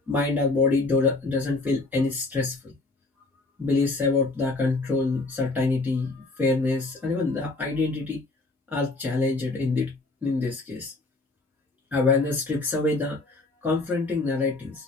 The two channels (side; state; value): right; quieter; 3.2 dB